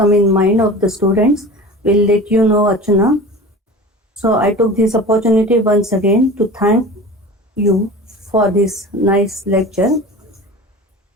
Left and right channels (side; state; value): both; normal; correlation 0.36